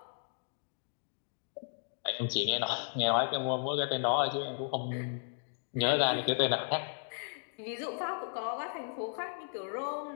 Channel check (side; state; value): right; silent; digital silence